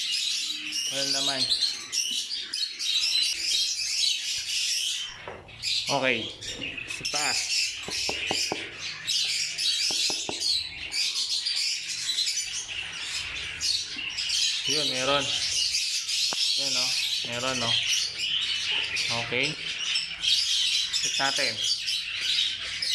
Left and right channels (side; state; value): both; identical; correlation 1.00